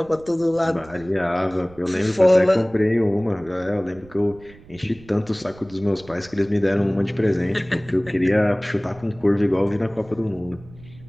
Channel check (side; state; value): right; noise; rumble, 22 dB below the sound